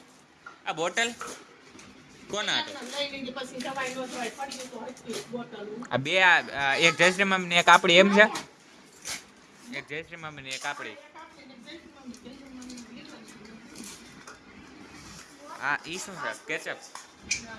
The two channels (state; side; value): identical; both; correlation 1.00